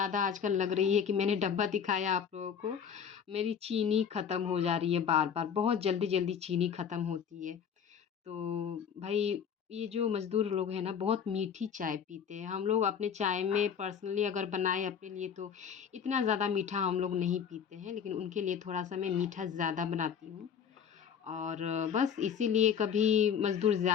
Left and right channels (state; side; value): quieter; right; 7.5 dB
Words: आजकल लग रही है कि मैंने डब्बा दिखाया आप लोगों को, मेरी चीनी ख़त्म हो जा रही है बार-बार, बहुत जल्दी-जल्दी चीनी ख़त्म होती है। तो भाई ये जो मज़दूर लोग हैं ना बहुत मीठी चाय पीते हैं। हम लोग अपने चाय में पर्सनली अगर बनाएँ अपने लिए तो इतना ज़्यादा मीठा हम लोग नहीं पीते हैं, लेकिन उनके लिए थोड़ा-सा मैं मीठा ज़्यादा बनाती हूँ। और बस इसीलिए कभी मज़दूर